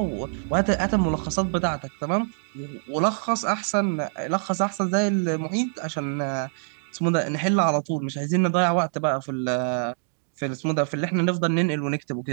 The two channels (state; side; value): silent; left; digital silence